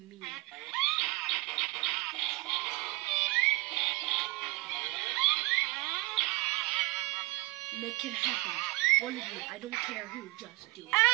Make it happen. One of you, I don't care who, just do it.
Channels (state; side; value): quieter; left; 22.4 dB